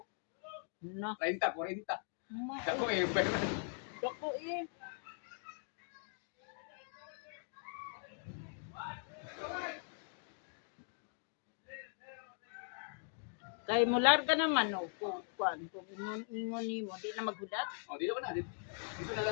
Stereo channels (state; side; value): silent; right; 51 dB below the other